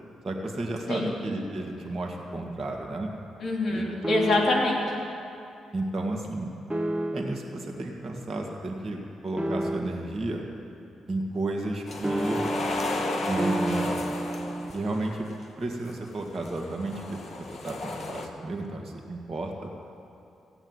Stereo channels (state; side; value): normal; both; correlation 0.86